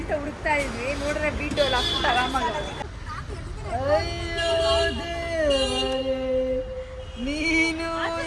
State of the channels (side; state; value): both; identical; correlation 1.00